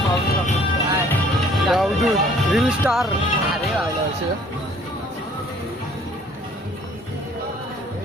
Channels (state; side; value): normal; both; correlation 0.57